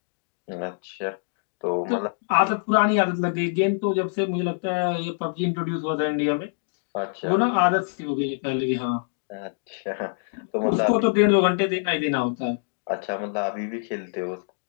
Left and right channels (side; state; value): right; silent; digital silence